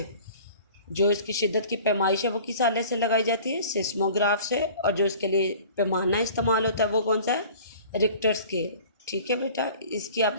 जो इसकी शिद्दत की पैमाइश है वो किस आले से लगाई जाती है? सेस्मोग्राफ से। और जो इसके लिए पैमाना इस्तेमाल होता है वो कौन सा है? Richter scale. ठीक है बेटा, इसकी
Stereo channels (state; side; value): inverted; both; correlation -0.45